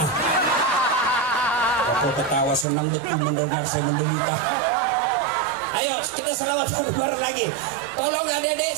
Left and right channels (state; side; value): drops out; left; at 2.7 s